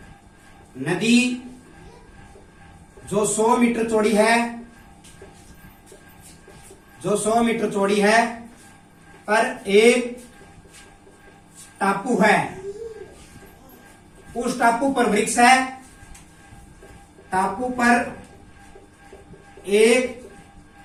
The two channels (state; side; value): identical; both; correlation 1.00